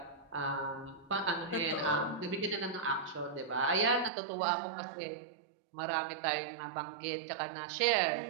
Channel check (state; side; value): drops out; left; at 4.1 s